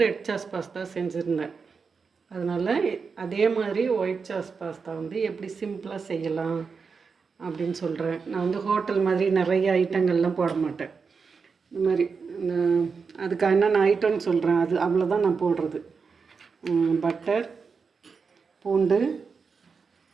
ரெட் சாஸ் பாஸ்தா செஞ்சுருந்தேன். அதனால் அதே மாதிரி ஒயிட் சாஸ் பாஸ்தா எப்படி சிம்பிளாக செய்யலாம் அப்படின்னு சொல்கிறேன். நான் ஹோட்டல் மாதிரி நிறைய ஐட்டங்கள்லாம் போட மாட்டேன். இந்த மாதிரி அதுக்கு என்னென்ன ஐட்டம்னு சொல்கிறேன். அது அவ்வளோதான் நான் போடுறது. பட்டர், பூண்டு,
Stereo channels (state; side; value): quieter; left; 5.3 dB